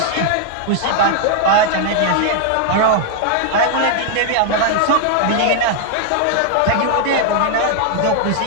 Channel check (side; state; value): both; different; correlation 0.00